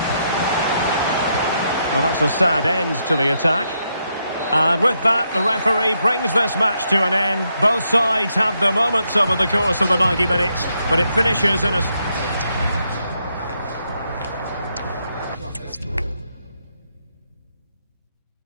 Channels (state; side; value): inverted; both; correlation -0.79